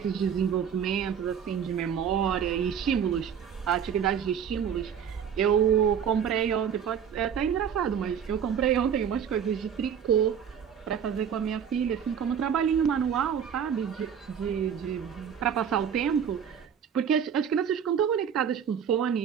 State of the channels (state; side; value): quieter; left; 8.0 dB